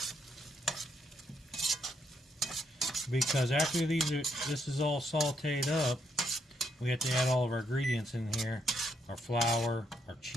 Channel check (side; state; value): both; normal; correlation 0.75